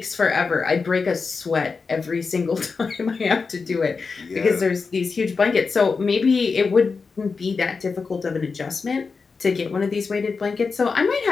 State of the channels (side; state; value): right; quieter; 4.8 dB